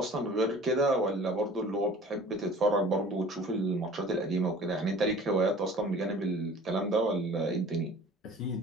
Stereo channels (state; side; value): normal; both; correlation 0.46